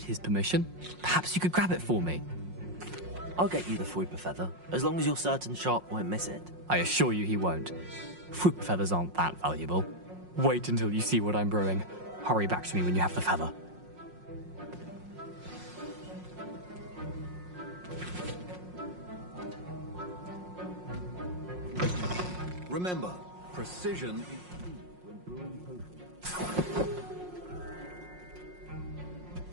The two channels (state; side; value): late; left; 5.5 ms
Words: his permission, perhaps you could grab it for me. I'll get you the Fwooper feather, as long as you're certain Sharp won't miss it. I assure you he won't. Fwooper feathers aren't that valuable. Wait until you see what I'm brewing. Hurry back to me when you have the feather. Remember, precision is key when brewing potions.